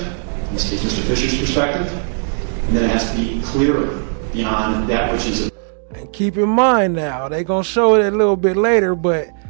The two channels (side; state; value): left; silent; 61 dB below the other